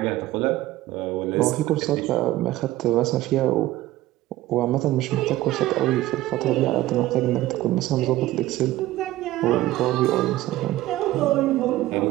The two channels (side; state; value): left; quieter; 15.9 dB